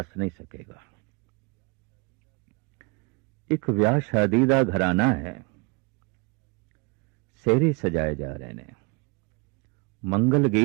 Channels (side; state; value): left; quieter; 29.4 dB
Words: नहीं सकेगा। एक विआह शादी का घराना है, सेहरे सजाए जा रहे ने, मंगल